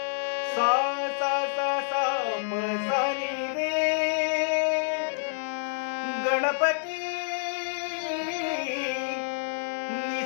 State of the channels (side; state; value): right; silent; digital silence